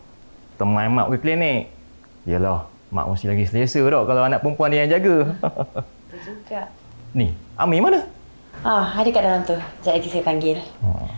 teman mak pergi klinik. Yalah, mak mesti lagi selesa dah kalau anak perempuan dia yang jaga. Betul juga. Ni, Ami mana? Ada kat dalam tu. Sekejap lagi saya panggil.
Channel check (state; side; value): inverted; both; correlation -1.00